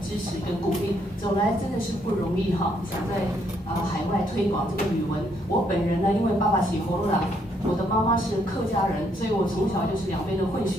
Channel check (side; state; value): both; normal; correlation 0.72